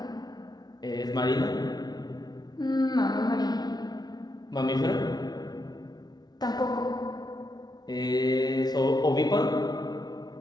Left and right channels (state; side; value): late; right; 0.19 ms